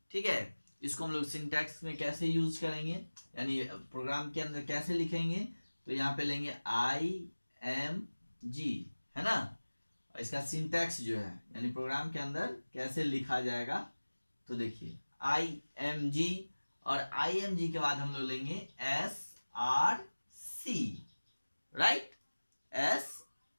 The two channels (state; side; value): inverted; both; correlation -1.00